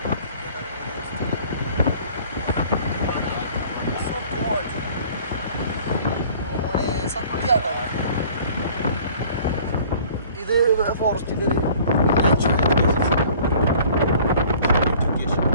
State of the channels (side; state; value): both; inverted; correlation -0.51